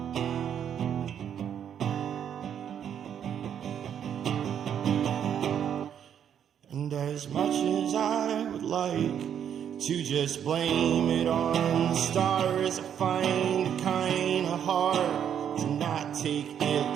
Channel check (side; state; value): left; quieter; 8.9 dB